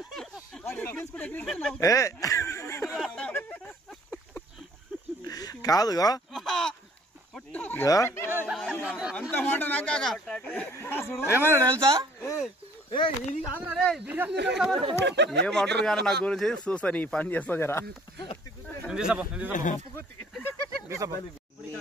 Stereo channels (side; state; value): both; normal; correlation 0.57